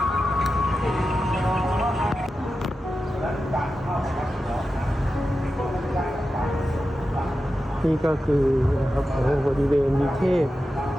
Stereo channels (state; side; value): normal; both; correlation 0.91